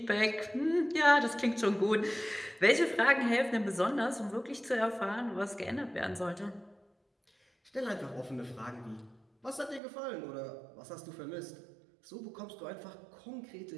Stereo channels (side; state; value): left; drops out; at 9.8 s